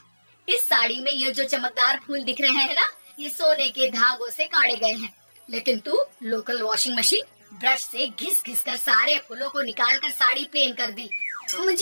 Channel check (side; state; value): both; inverted; correlation -1.00